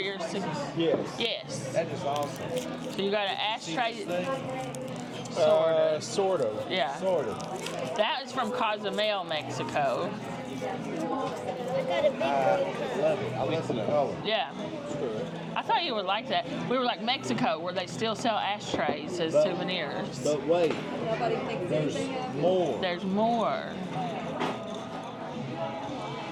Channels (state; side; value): identical; both; correlation 1.00